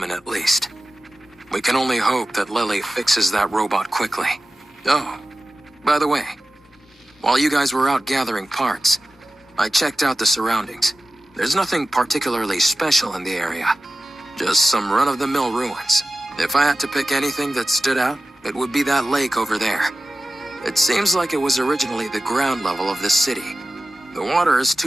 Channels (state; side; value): normal; both; correlation 0.94